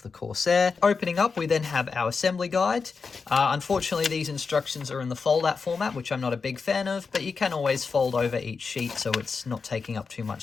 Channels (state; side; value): quieter; right; 5.0 dB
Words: the Corsair. Opening up, we then have our assembly guide. Unfortunately, these instructions are in the fold-out format, which I'm not a big fan of, but you can always fold over each sheet so it's not taking up too